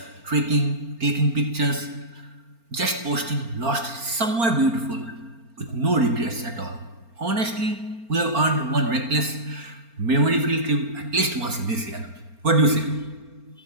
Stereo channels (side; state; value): left; late; 4.4 ms